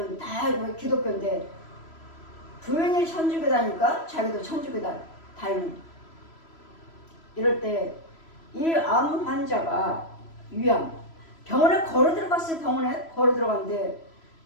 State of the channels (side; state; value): right; late; 3.0 ms